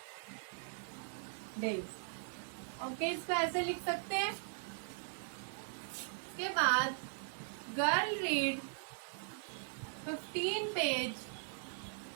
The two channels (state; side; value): silent; left; 51 dB below the other